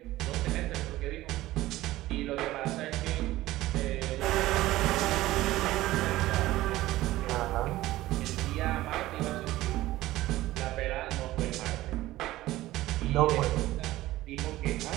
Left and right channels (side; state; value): left; quieter; 16.6 dB